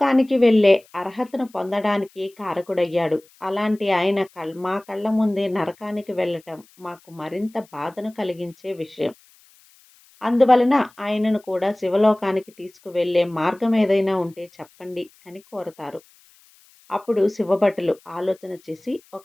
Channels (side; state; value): left; noise; hiss, 29 dB below the sound